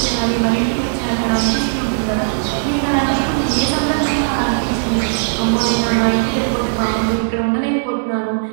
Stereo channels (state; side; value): silent; left; digital silence